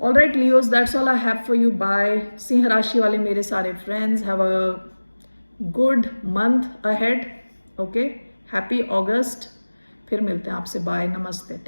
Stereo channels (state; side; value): inverted; both; correlation -1.00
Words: right Leos, that's all I have for you. Bye. सिंह राशि वाले मेरे सारे friends, have a good month ahead. Okay, happy August. फिर मिलते हैं आपसे. बाय, नमस्ते,